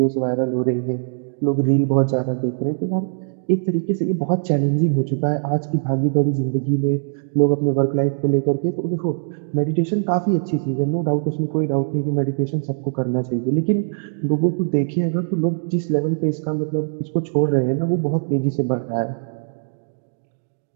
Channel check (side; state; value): left; silent; digital silence